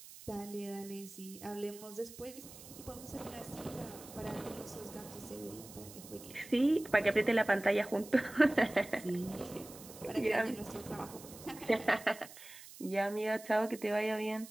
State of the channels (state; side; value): noise; right; hiss, 17 dB below the sound